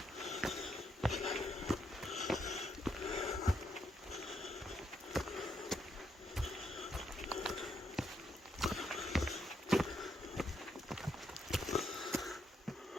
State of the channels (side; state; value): both; normal; correlation 0.77